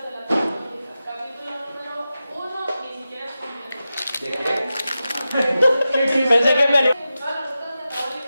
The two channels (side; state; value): both; inverted; correlation -0.92